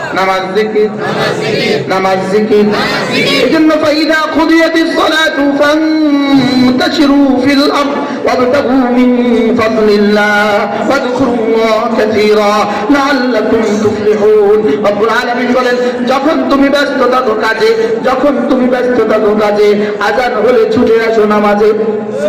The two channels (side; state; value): both; identical; correlation 1.00